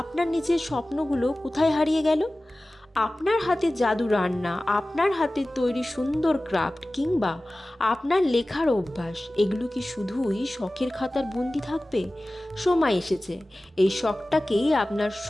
নিজের স্বপ্নগুলো কোথায় হারিয়ে গেল? আপনার হাতে জাদু রান্না, আপনার হাতে তৈরি সুন্দর ক্রাফট, কিংবা আপনার লেখার অভ্যাস, এগুলো কি শুধুই শখের খাতার বন্দি থাকবে? সময় এসেছে এই শখটাকেই আপনার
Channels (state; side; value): normal; both; correlation 0.97